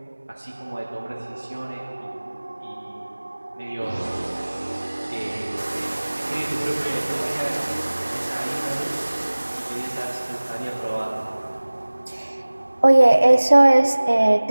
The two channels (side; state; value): both; inverted; correlation -1.00